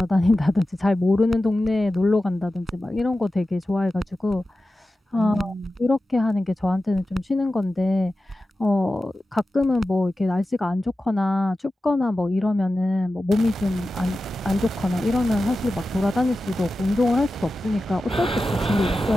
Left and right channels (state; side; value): normal; both; correlation 0.93